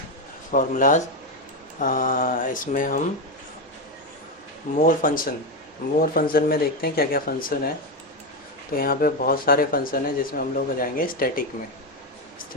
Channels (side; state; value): both; normal; correlation 0.11